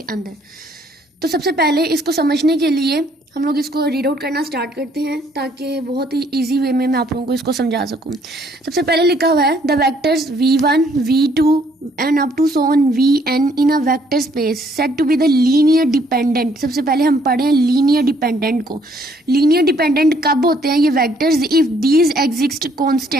अंदर। तो सबसे पहले इसको समझने के लिए हम लोग इसको रीड आउट करना स्टार्ट करते हैं ताकि बहुत ही इजी वे में मैं आप लोगों को इसको समझा सकूं। सबसे पहले लिखा हुआ है the vectors v1 v2 and up to so on vn in a vector space set to be the linear dependent. सबसे पहले हम पढ़े हैं लीनियर डिपेंडेंट को। लीनियर डिपेंडेंट कब होते हैं ये vectors? If these exist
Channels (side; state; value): both; normal; correlation 0.65